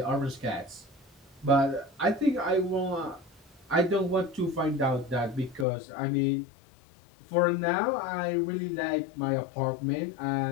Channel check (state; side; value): drops out; right; at 5.7 s